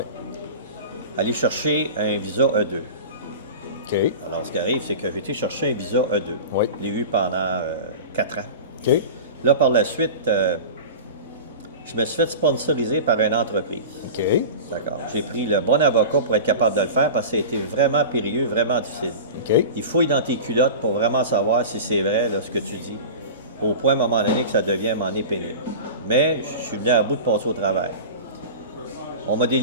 Aller chercher un visa E2. OK. Alors, ce qui arrive, c'est que j'ai été chercher un visa E2. Oui. Je l'ai eu pendant 4 ans. OK. Là, par la suite, je me suis fait sponsoriser par une entreprise. OK. D'accord? J'ai pris le bon avocat pour être capable de le faire parce que ça a été vraiment périlleux, vraiment difficile. OK. Il fouille dans tes culottes pour vraiment savoir si c'est vrai là, ce que tu dis, au point à un moment donné que ça devient à un moment donné pénible. Mais je suis venu à bout de passer au travers. On m'a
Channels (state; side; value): inverted; both; correlation -0.32